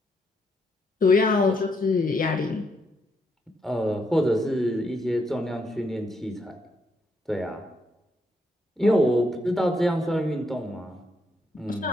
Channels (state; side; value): normal; both; correlation 0.76